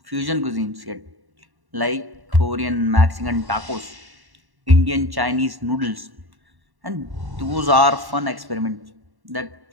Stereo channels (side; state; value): left; late; 1.1 ms